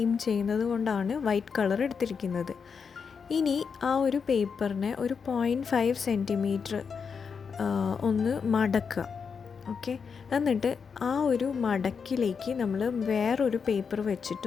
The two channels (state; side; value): quieter; right; 6.0 dB